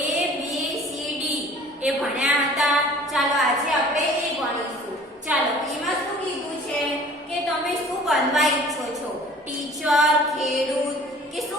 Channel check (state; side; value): normal; both; correlation 0.48